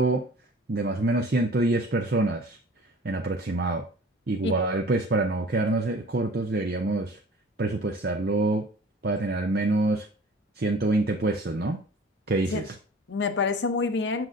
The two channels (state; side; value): normal; both; correlation 0.45